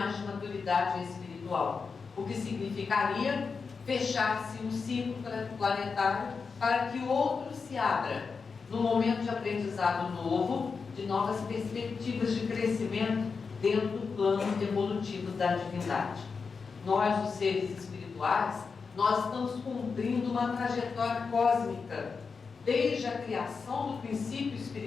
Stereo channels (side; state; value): right; quieter; 5.1 dB